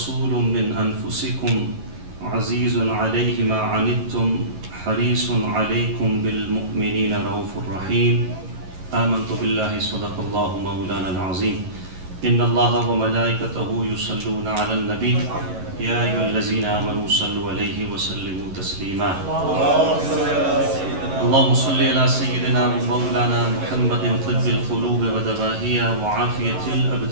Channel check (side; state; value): left; late; 11 ms